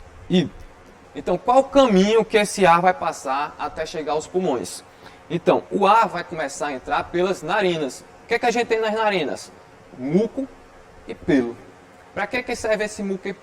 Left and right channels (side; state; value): both; identical; correlation 1.00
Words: Então, qual o caminho que esse ar vai passar até chegar aos pulmões? Então, o ar vai começar a entrar pelas narinas. que é que a gente tem nas narinas? Muco e pelo. Para que serve esse muco e